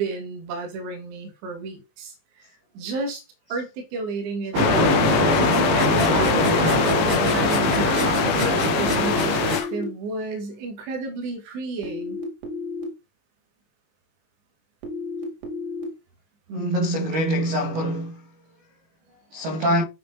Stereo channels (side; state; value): left; late; 19 ms